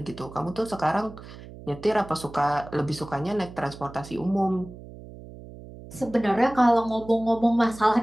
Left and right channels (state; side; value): noise; right; hum, 16 dB below the sound